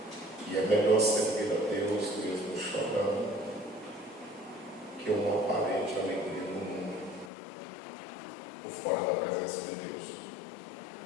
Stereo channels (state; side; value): drops out; right; at 7.3 s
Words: E é melhor servir a Deus mesmo chorando que uma aparente alegria no mundo, por fora da presença de Deus.